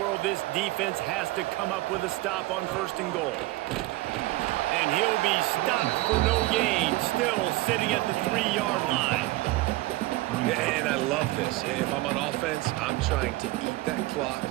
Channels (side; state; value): left; quieter; 19.1 dB